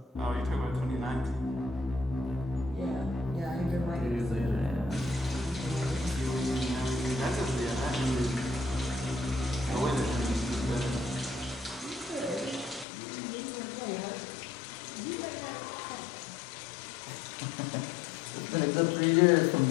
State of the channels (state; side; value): drops out; right; at 12.9 s